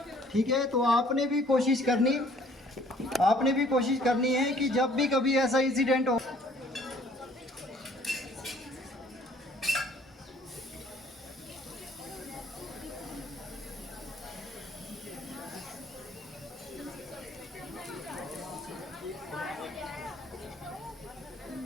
ठीक है। तो आपने भी कोशिश करनी है कि जब भी कभी ऐसा इंसिडेंट हो,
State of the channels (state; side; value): normal; both; correlation 0.58